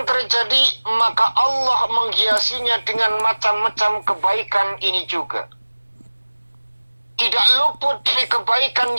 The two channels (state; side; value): inverted; both; correlation -1.00